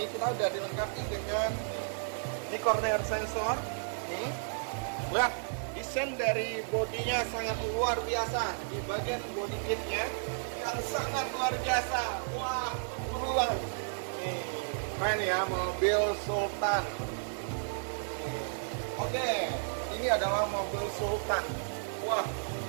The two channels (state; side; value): silent; left; digital silence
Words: kita udah dilengkapi dengan ini corner sensor. Nih, lihat desain dari bodinya sangat luar biasa. Di bagian body kitnya yang sangat luar biasa. Wah, buruan. Nih, keren ya mobil Sultan. Oke, ini adalah mobil Sultan. Wah,